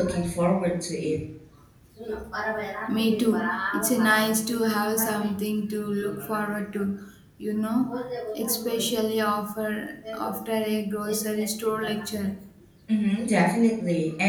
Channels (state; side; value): identical; both; correlation 1.00